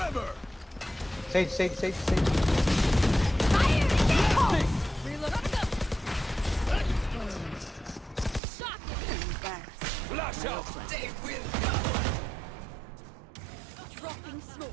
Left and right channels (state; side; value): drops out; left; at 8.4 s